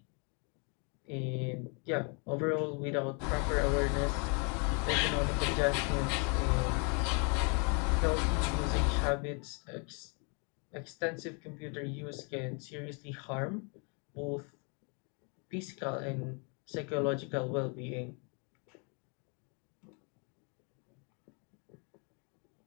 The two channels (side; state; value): right; quieter; 36.0 dB